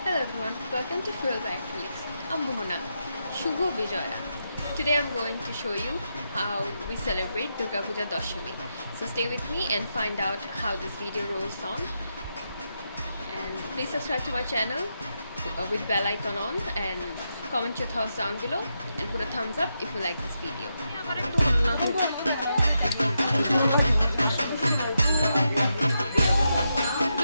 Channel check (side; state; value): both; inverted; correlation -0.84